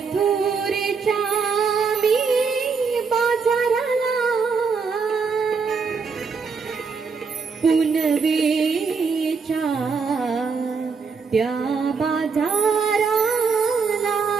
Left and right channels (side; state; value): left; quieter; 5.2 dB